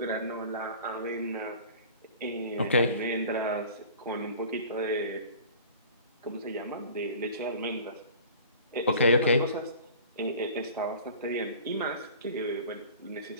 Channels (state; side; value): inverted; both; correlation -0.43